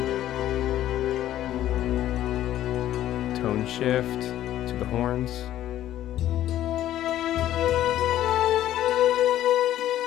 Tone shift to the horns.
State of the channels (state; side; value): quieter; right; 12.7 dB